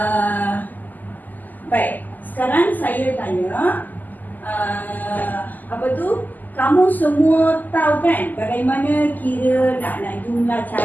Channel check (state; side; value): late; right; 0.084 ms